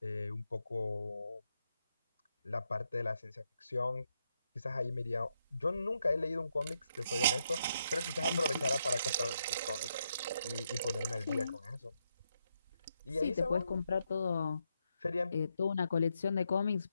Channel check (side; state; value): both; inverted; correlation -0.80